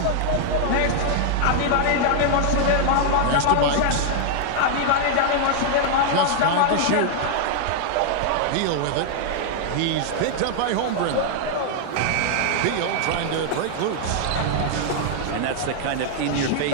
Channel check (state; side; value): different; both; correlation 0.00